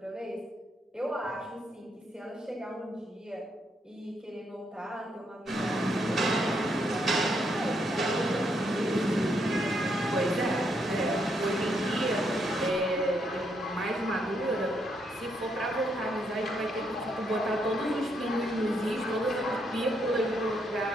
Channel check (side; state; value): both; normal; correlation 0.76